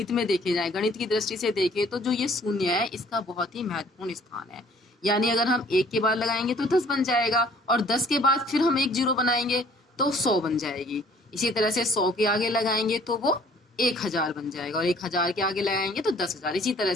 में देखे जाए, गणित की दृष्टि से देखें तो जो ये शून्य है इसका बहुत ही महत्वपूर्ण स्थान है। यानी अगर हम 1 के बाद लगाएंगे तो 10 बन जाएगा, और 10 के बाद फिर हम एक जीरो बनाएंगे तो 100 बन जाएगी। इसी तरह से 100 के आगे लगाएंगे तो वो 1000 बन जाएगा, और 1000 के आगे लगाएंगे तो 10,000। इसी तरह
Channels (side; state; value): both; normal; correlation 0.57